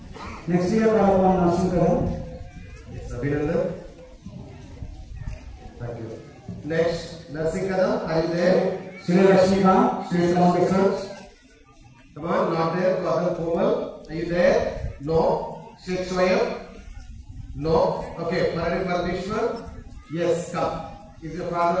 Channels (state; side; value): identical; both; correlation 1.00